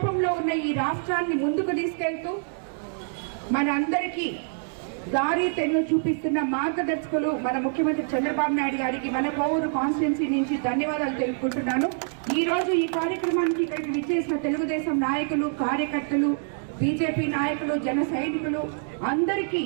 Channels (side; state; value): left; silent; digital silence